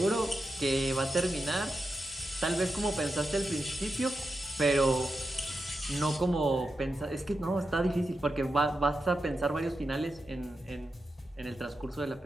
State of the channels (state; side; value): normal; both; correlation 0.89